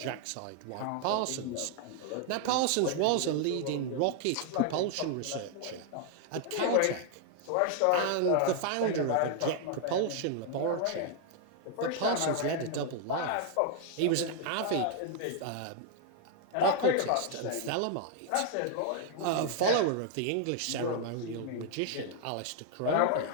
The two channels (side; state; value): both; different; correlation 0.00